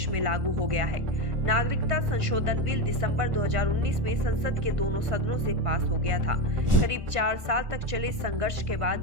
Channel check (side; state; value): left; late; 1.4 ms